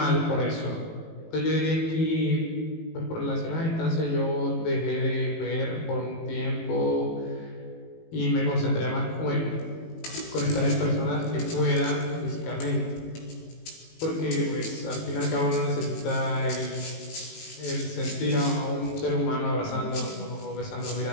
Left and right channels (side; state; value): right; late; 18 ms